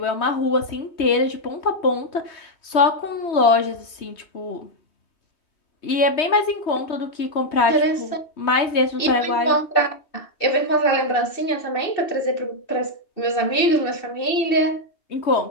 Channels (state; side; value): late; right; 3.2 ms